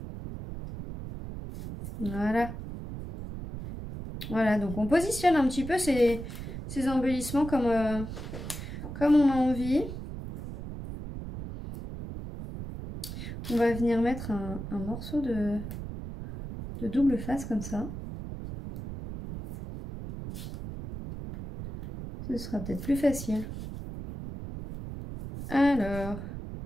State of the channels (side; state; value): right; noise; rumble, 8 dB below the sound